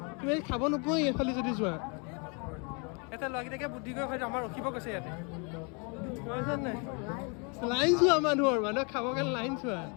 তুমি খাব নোপোৱা এইফালে যদি যোৱা এটা ল'ৰাকেইটাকে বুদ্ধি কৰি হয়তো আমাৰ ৰখিব কৈছে ইয়াতে নাই লাইন চোৱা মানুহৰ খাবৰ কাৰণে লাইন চোৱা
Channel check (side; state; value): right; quieter; 34.5 dB